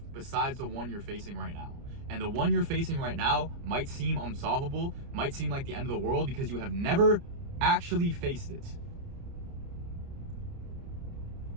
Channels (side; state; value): left; late; 30 ms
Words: besides the one you're facing right now. And the one you're facing right now might seem unsolvable, might seem like the end of the world, because you have never actually faced it.